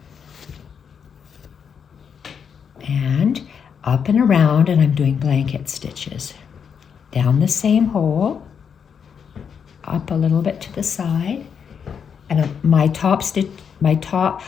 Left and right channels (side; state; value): right; quieter; 7.0 dB